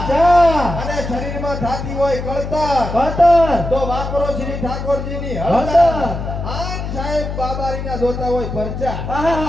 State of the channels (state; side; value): noise; left; hum, 6 dB below the sound